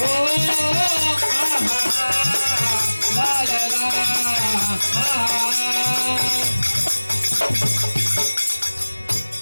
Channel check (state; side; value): inverted; both; correlation -1.00